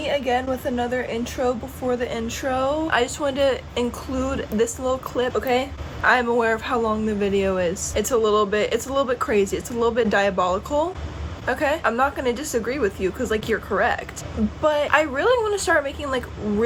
again with another intro before the intro. I just wanted to include this little clip, okay? I'm aware of how long the video is. It's a little bit crazy. It's a little bit diabolical. Okay, I'm not gonna disagree with you because like you're correct, but I really want to start making like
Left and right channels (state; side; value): identical; both; correlation 1.00